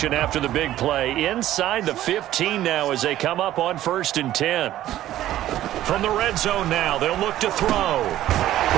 after the big play? Inside the 15 now as they come up on 1st and 10. From the red zone now, they'll look to throw.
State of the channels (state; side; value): quieter; left; 13.5 dB